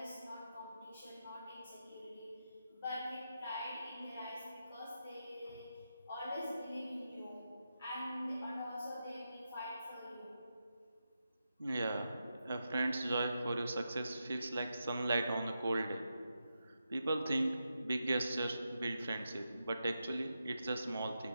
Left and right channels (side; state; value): both; inverted; correlation -0.87